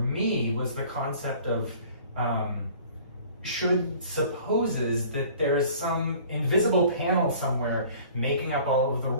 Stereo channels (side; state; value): both; inverted; correlation -0.49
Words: was the concept of should supposes that there's some invisible panel somewhere making up all of the